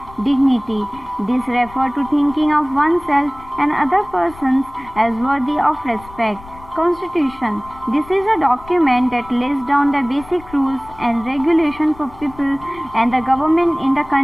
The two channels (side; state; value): left; noise; rumble, 20 dB below the sound